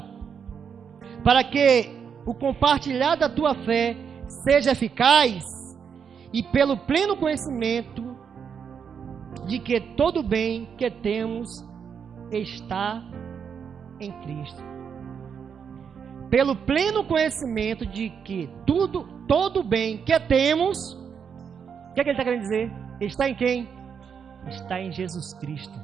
para que o compartilhar da tua fé seja eficaz e pelo pleno conhecimento de que todo bem que temos está em Cristo. Pelo pleno conhecimento de que todo bem que temos, o que é que ele está querendo dizer? Está em quem? Está em Jesus Cristo.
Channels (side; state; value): left; quieter; 6.8 dB